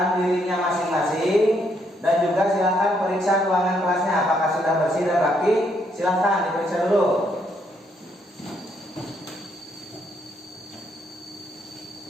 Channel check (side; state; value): both; normal; correlation 0.73